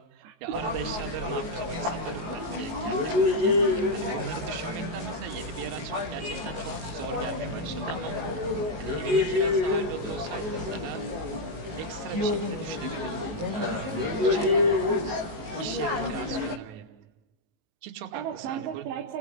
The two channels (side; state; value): left; late; 19 ms